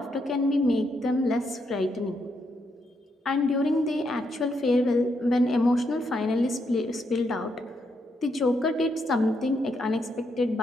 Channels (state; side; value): normal; both; correlation 0.79